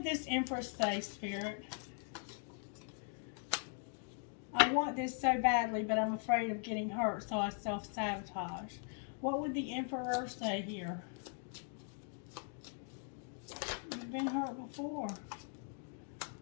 this Empress say, Spirit? I want this so badly, but I'm afraid of getting hurt, so I self-sabotage. What would the Emperor say here? You've been hurt before.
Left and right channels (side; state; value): right; silent; 51 dB below the other